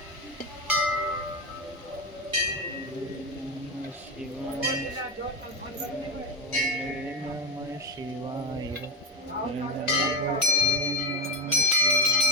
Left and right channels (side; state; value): both; normal; correlation 0.16